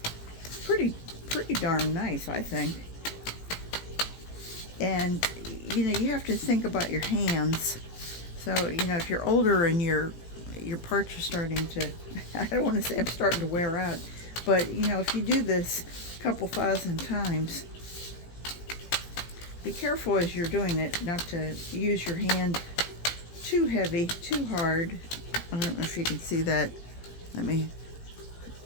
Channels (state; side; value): late; right; 18 ms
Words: pretty darn nice, I think. And you have to think about your hands. So if you're older and your parts are starting to, I don't want to say I'm starting to wear out, but if you do this a couple thousand times, be careful as you're doing it not to use your hand too heavy, too hard. I don't know if you can see that. Let me